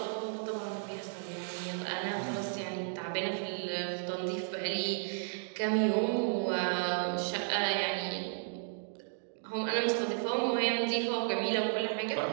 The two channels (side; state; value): left; silent; digital silence